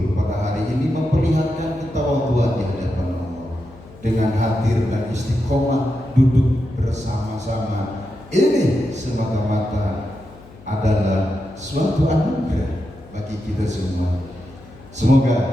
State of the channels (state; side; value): noise; left; hum, 21 dB below the sound